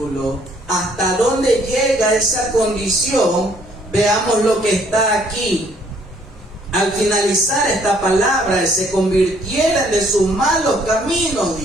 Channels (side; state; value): both; normal; correlation 0.64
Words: ¿Hasta dónde llega esa condición? Veamos lo que está aquí. Al finalizar esta palabra, se convirtieran de sus malos caminos,